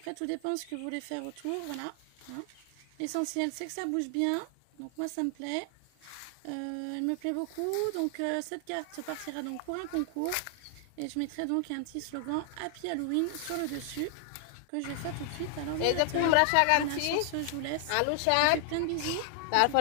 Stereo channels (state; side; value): different; both; correlation 0.00